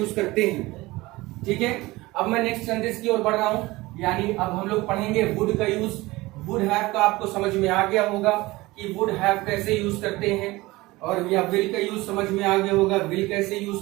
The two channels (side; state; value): left; quieter; 20.4 dB